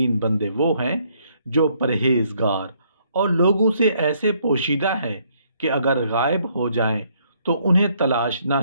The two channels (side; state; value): both; inverted; correlation -0.69